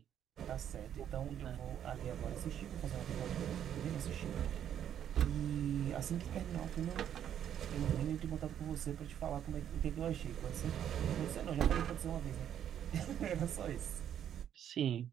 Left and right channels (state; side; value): quieter; left; 9.8 dB